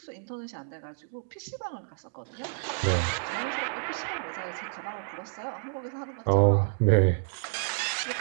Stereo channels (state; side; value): silent; left; digital silence